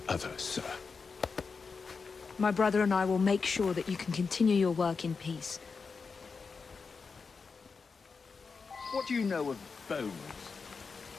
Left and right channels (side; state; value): right; quieter; 5.0 dB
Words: other, sir. My brother and I will make sure that you can continue your work in peace. What do you know of bones?